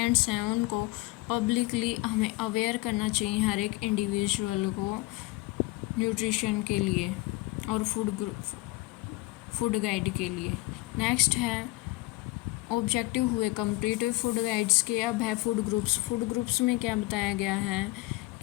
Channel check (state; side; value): quieter; right; 20.7 dB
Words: हैं उनको पब्लिकली हमें अवेयर करना चाहिए हर एक इंडिविजुअल को न्यूट्रिशन के लिए और फूड गाइड के लिए। नेक्स्ट है ऑब्जेक्टिव हुए कंप्लीट फूड गाइड्स के। अब है फूड ग्रुप्स। फूड ग्रुप्स में क्या बताया गया है